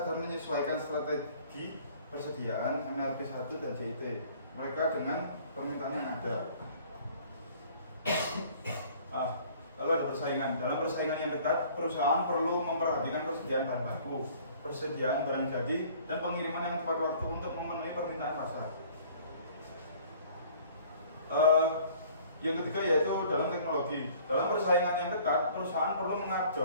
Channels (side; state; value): both; inverted; correlation -0.53